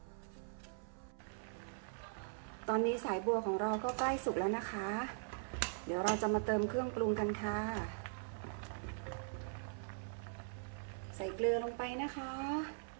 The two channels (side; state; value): left; silent; 50 dB below the other